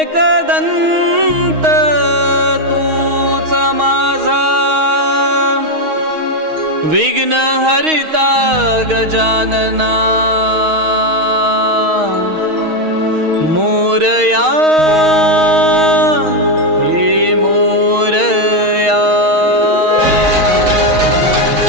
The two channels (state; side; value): late; left; 6.4 ms